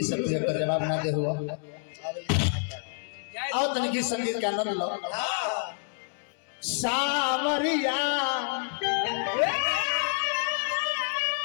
सब का जवाब ना दे हुआ आओ तनिक संगीत के आनंद लो सामरिया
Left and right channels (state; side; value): silent; right; digital silence